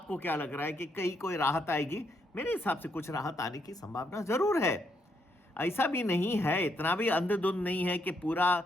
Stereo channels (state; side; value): normal; both; correlation 0.76